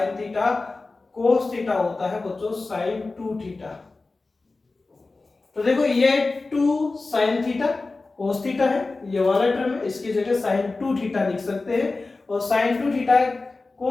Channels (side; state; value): right; quieter; 3.6 dB